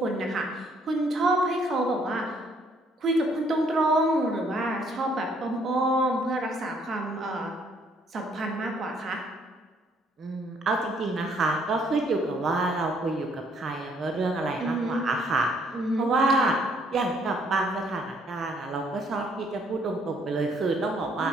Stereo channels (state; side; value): normal; both; correlation 0.66